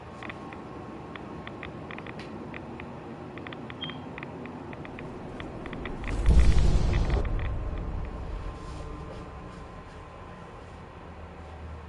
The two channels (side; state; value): both; identical; correlation 1.00